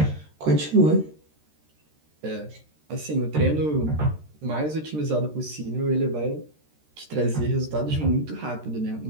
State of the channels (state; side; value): late; left; 13 ms